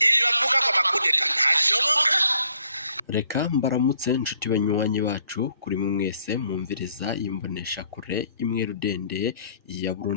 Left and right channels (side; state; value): both; inverted; correlation -0.65